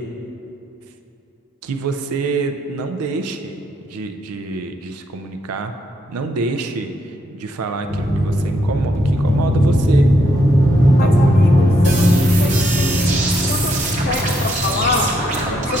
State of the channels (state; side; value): normal; both; correlation 0.76